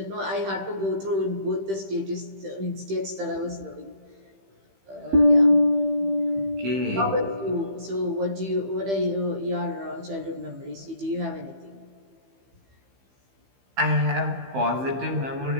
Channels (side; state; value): left; late; 15 ms